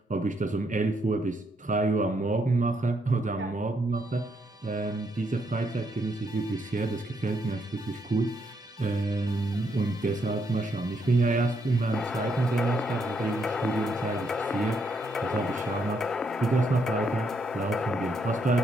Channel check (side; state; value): both; normal; correlation 0.76